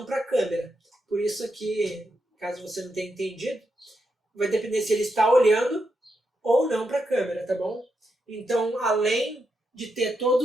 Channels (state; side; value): normal; both; correlation 0.84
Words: para a câmera. Por isso aqui, caso você não tenha entendido, vai depender se ele está olhando ou não para a câmera, tá bom? Então, além de ter